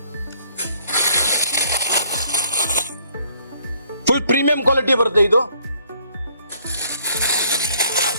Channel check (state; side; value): inverted; both; correlation -0.63